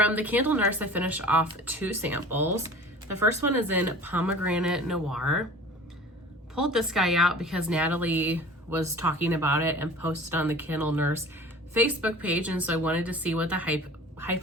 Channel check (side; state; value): both; normal; correlation 0.42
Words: the Candle Nurse, I finished off 2 samples. The first one is in Pomegranate Noir. Pulled this guy out because Natalie was talking about it and posted on the Candle Nurse Facebook page, and so I wanted to see what the